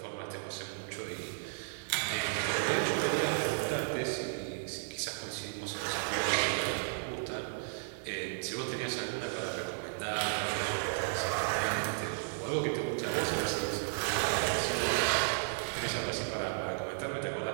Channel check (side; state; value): left; silent; digital silence